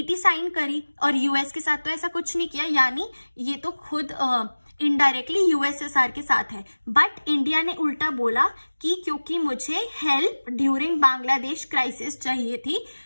साइन करी और यूएस के साथ तो ऐसा कुछ नहीं किया, यानी ये तो खुद इनडायरेक्टली यूएसएसआर के साथ है. बट इंडिया ने उल्टा बोला कि क्योंकि मुझे हेल्प ड्यूरिंग बांग्लादेश क्राइसिस चाहिए थी,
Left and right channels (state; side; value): inverted; both; correlation -1.00